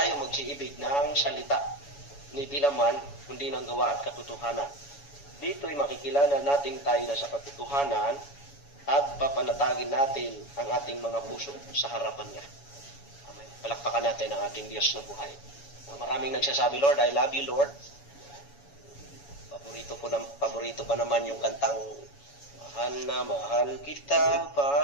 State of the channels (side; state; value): right; late; 7.1 ms